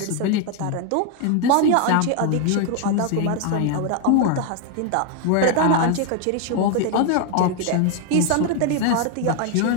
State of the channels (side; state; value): both; different; correlation 0.01